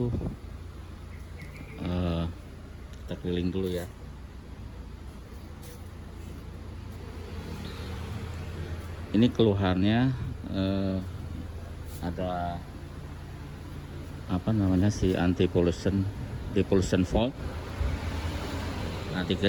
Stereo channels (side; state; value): both; identical; correlation 1.00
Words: Kita keliling dulu ya. Ini keluhannya ada apa namanya, si anti pollution depollution fault. Nanti